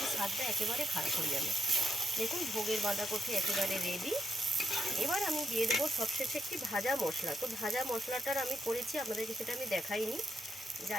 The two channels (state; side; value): normal; both; correlation 0.81